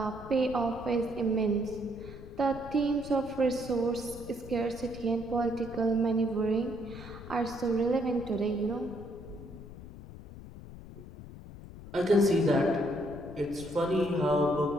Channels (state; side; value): noise; left; rumble, 14 dB below the sound